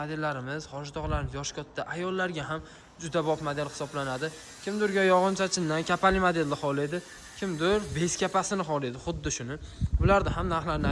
hojatog'larimiz yosh katta ayollarga ham juda bob model hisoblanadi. Kimdirga yog'inchachindan kapali modelni xohlaydi, kimdir bez kapasini xohlaydi, xuddi shuni. Bularda ham narxlarini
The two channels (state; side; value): identical; both; correlation 1.00